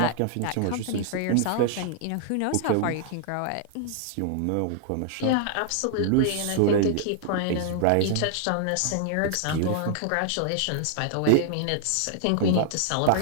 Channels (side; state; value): both; different; correlation 0.00